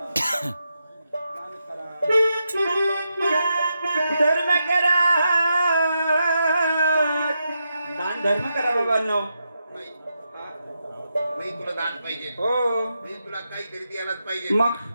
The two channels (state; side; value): inverted; both; correlation -0.85